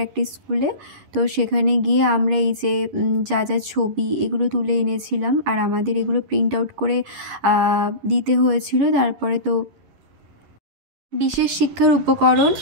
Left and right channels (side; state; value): left; late; 10 ms